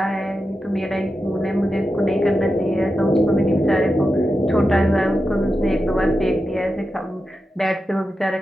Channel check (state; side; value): normal; both; correlation 0.90